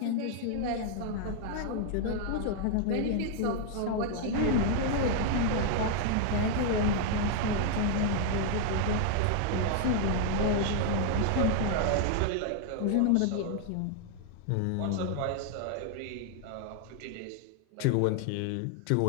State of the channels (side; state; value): both; different; correlation 0.00